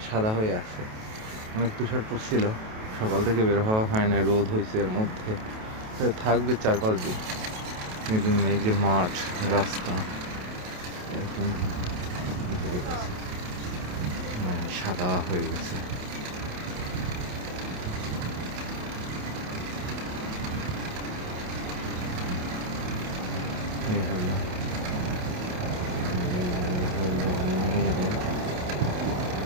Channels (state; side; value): late; left; 28 ms